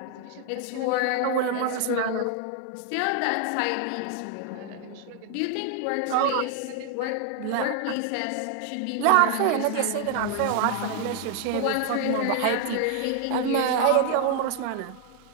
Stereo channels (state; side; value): different; both; correlation 0.00